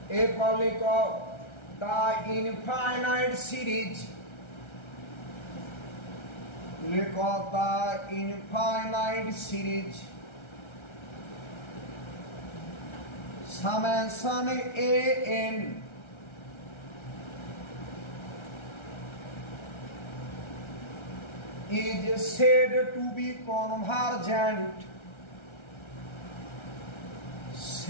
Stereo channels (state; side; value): late; right; 1.3 ms